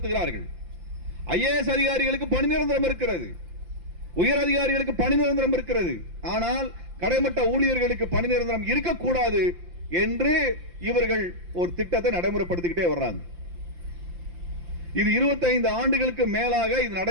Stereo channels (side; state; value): left; late; 5.8 ms